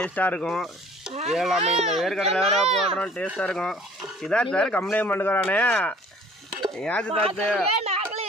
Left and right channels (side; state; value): both; normal; correlation 0.52